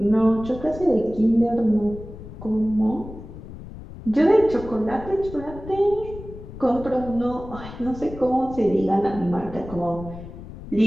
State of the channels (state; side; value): noise; left; rumble, 13 dB below the sound